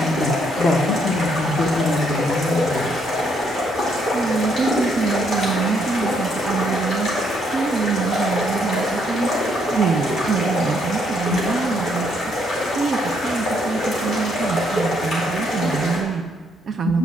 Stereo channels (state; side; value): normal; both; correlation 0.72